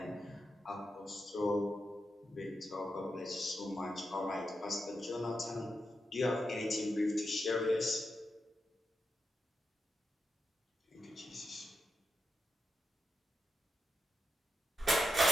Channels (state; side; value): normal; both; correlation 0.86